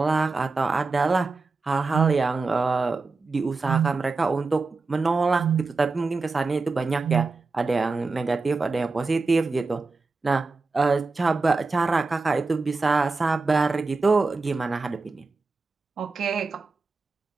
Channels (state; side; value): quieter; left; 3.9 dB